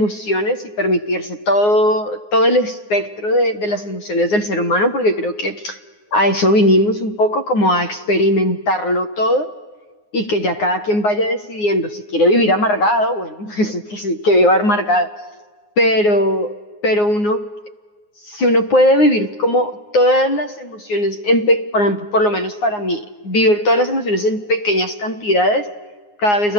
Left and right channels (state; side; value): late; right; 9.6 ms